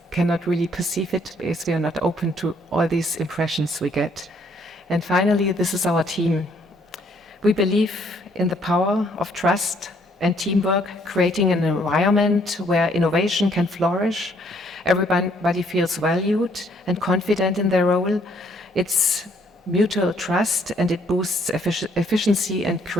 cannot really perceive it because we are not open to all these impressions we get. And finally, this is our team. We believe in the power of trust and teamwork, creating an environment where innovation can flourish. Everybody feels valued and confident in their role. It's mutual trust, and it boosts efficiency and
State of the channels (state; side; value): normal; both; correlation 0.66